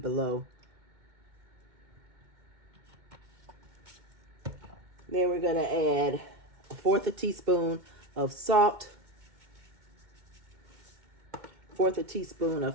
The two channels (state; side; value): late; left; 2.2 ms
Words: Then we're going to add 1/4 teaspoon of salt, 1/4 teaspoon